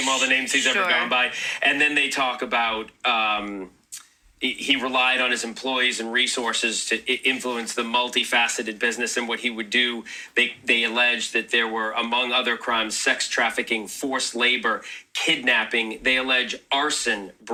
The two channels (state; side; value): identical; both; correlation 1.00